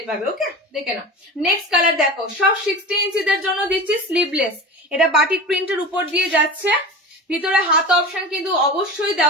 পাবে। ওকে, দেখে না। নেক্সট কালার দেখো, সব 60 ইঞ্চিদের জন্য দিচ্ছি স্লিভলেস, এটা বাটিক প্রিন্টের উপর দিয়ে যাচ্ছে, ভিতরে হাত অপশন কিন্তু অবশ্যই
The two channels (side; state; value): both; normal; correlation 0.31